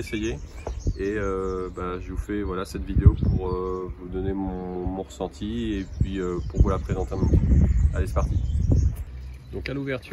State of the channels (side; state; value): both; identical; correlation 1.00